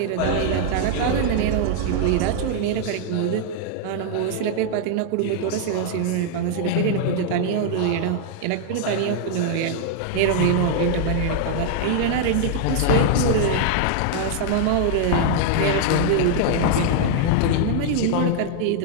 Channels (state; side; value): different; both; correlation -0.01